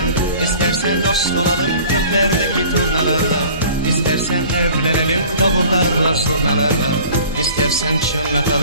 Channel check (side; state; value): both; inverted; correlation -0.46